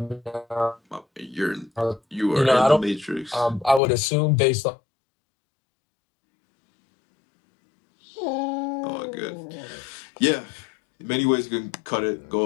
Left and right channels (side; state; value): right; drops out; at 3.8 s